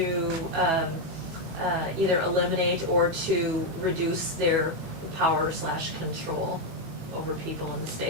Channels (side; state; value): left; late; 18 ms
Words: either eliminate or to reduce their power / control over people in the